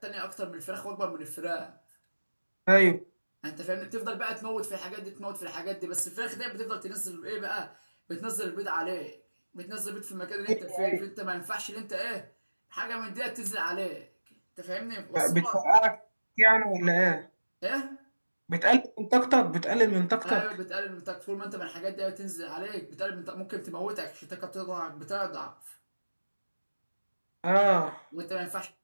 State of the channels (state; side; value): inverted; both; correlation -1.00